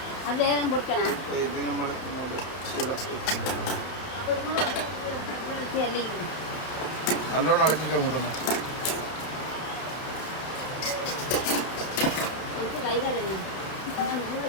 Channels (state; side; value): late; right; 31 ms